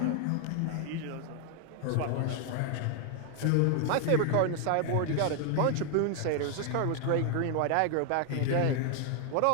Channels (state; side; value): different; both; correlation 0.00